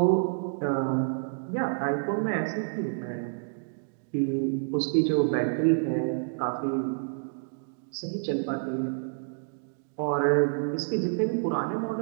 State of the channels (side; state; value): left; silent; digital silence